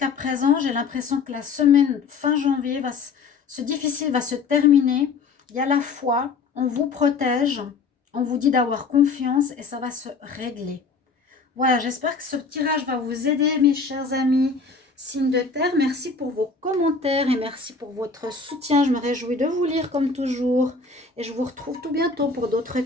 présent, j'ai l'impression que la semaine fin janvier, ce difficile va se terminer. Il y a la foi, on vous protège, on vous dit d'avoir confiance et ça va se régler. Voilà, j'espère que ce tirage va vous aider, mes chers amis. Signe de terre, merci pour vos commentaires et merci pour votre soutien. Je me réjouis de vous lire comme toujours. Et je vous retrouve tout bientôt pour d'autres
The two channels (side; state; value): right; quieter; 4.6 dB